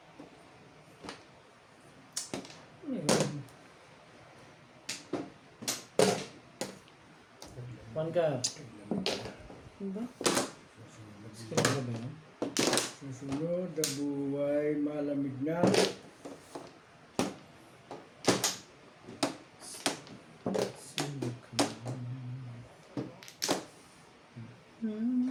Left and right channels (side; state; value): both; identical; correlation 1.00